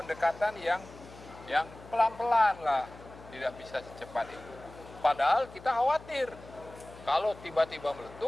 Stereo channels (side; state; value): left; noise; hum, 18 dB below the sound